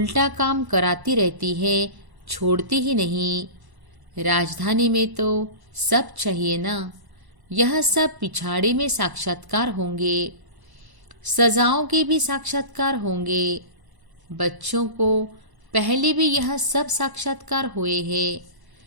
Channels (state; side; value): late; left; 1.0 ms